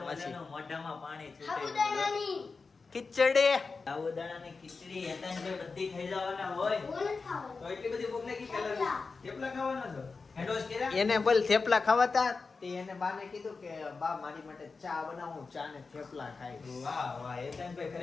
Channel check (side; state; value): right; quieter; 4.4 dB